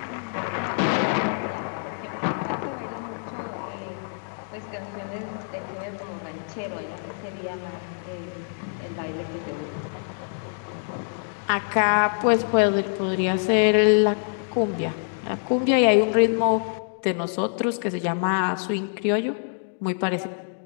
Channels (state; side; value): silent; right; digital silence